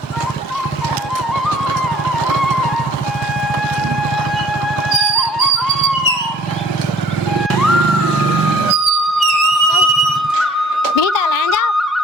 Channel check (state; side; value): normal; both; correlation 0.54